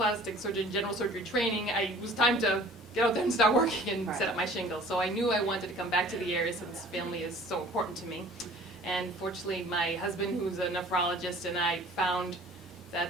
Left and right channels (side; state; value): both; normal; correlation 0.49